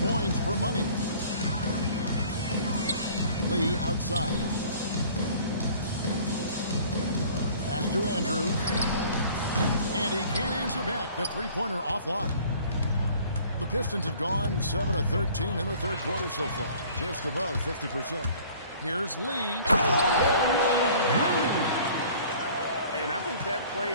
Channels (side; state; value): both; inverted; correlation -0.51